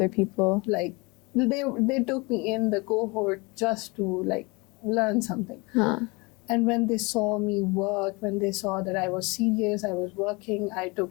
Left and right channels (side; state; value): right; quieter; 26.8 dB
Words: people. like they took me in the cohort just to like learn something. Huh. And when they saw me work, when they saw that I was serious, I was working, I